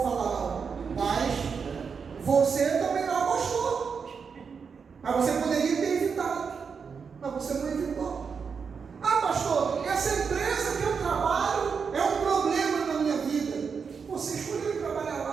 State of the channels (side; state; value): left; quieter; 5.9 dB